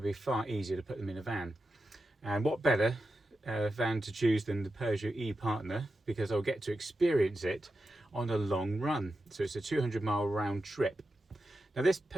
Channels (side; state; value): both; normal; correlation 0.90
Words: be far easier to put them in a van. And what better van to choose than the Peugeot e-Partner, because I'll get to experience it on a long run. So it's a 200-mile round trip. Now this